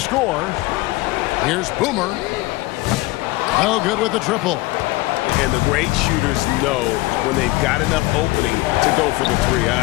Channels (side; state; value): right; quieter; 20.4 dB